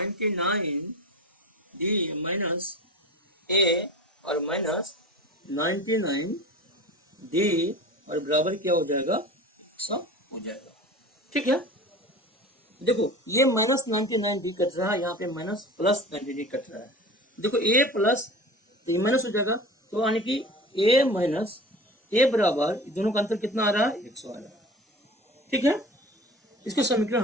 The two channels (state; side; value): normal; both; correlation 0.36